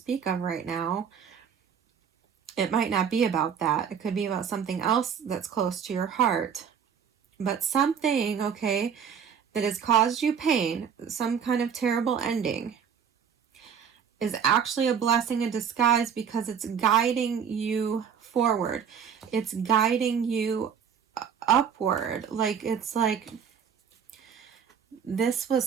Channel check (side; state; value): left; quieter; 7.5 dB